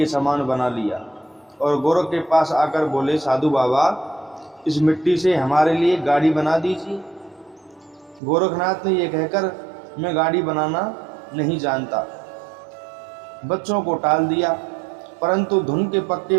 समान बना लिया और गोरख के पास आकर बोले, साधु बाबा, इस मिट्टी से हमारे लिए गाड़ी बना दीजिए। गोरखनाथ ने यह कहकर, मैं गाड़ी बनाना नहीं जानता, बच्चों को टाल दिया। परंतु धुन के पक्के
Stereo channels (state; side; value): drops out; left; at 8.2 s